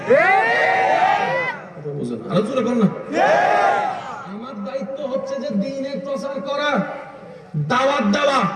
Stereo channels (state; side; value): identical; both; correlation 1.00